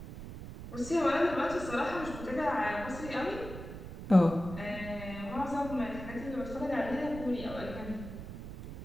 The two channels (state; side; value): noise; right; rumble, 10 dB below the sound